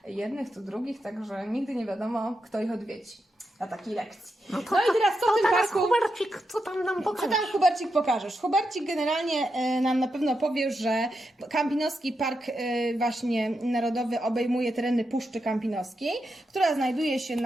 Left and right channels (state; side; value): normal; both; correlation 0.86